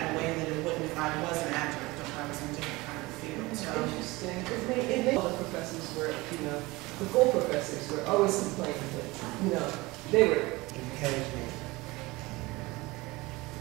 in a way that it wouldn't if I was an adjunct or if I was in a different kind of field. So. Interesting. It made all the professors were, you know, the full professors were always complaining that, you know, they were. Encouragement.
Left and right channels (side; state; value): left; quieter; 21.9 dB